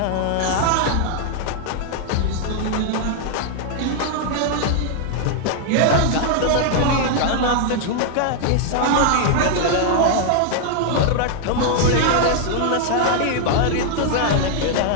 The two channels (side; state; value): both; different; correlation 0.00